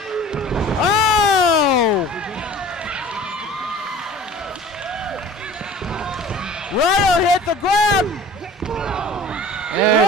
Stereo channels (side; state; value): both; normal; correlation 0.45